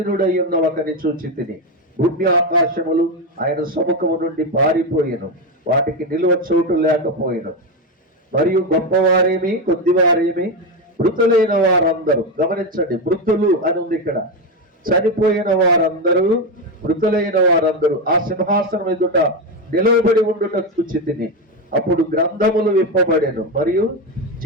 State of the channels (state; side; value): normal; both; correlation 0.11